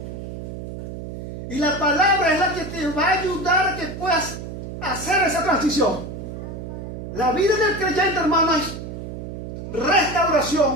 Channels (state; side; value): noise; right; hum, 8 dB below the sound